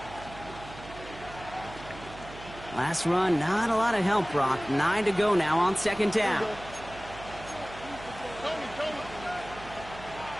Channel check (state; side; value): noise; right; hum, 16 dB below the sound